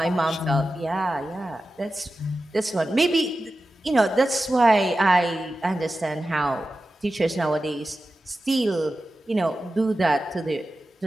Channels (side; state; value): both; normal; correlation 0.93